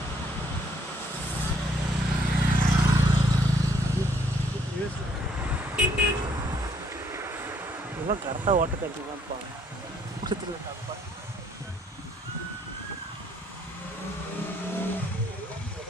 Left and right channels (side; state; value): both; normal; correlation 0.66